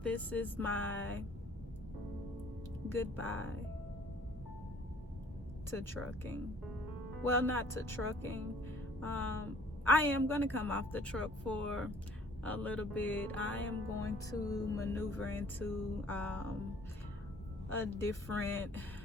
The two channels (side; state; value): both; normal; correlation 0.56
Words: this is my goodbye to trucking. Well, not to trucking. I am gonna come off the truck for a little bit. I am going to maneuver into a different